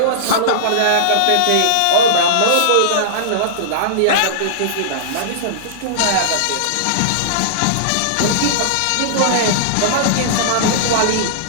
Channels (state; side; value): different; both; correlation -0.02